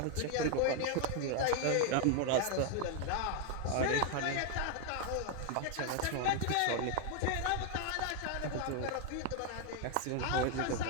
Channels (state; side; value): different; both; correlation 0.01